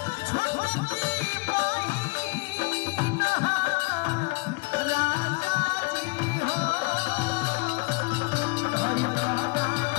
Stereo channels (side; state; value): right; quieter; 28.5 dB